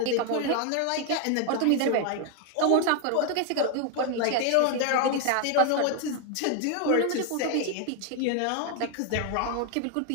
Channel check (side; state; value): both; different; correlation 0.01